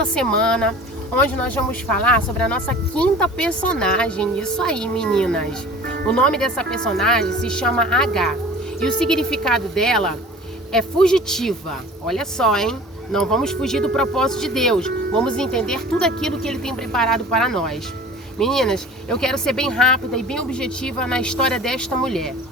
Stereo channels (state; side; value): normal; both; correlation 0.43